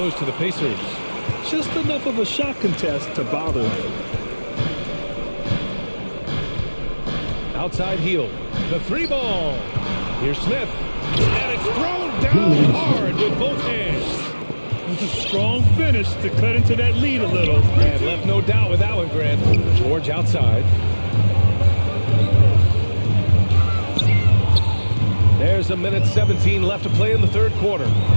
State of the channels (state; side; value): inverted; both; correlation -1.00